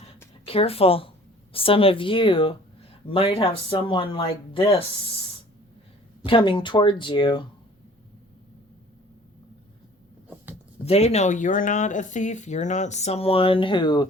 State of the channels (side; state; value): both; normal; correlation 0.51